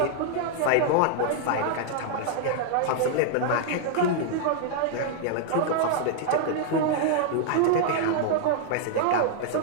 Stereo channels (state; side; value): different; both; correlation -0.01